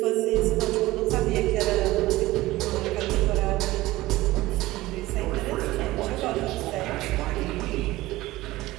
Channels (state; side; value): quieter; left; 18.0 dB